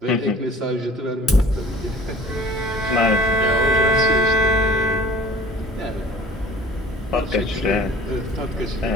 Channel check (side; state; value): both; normal; correlation 0.47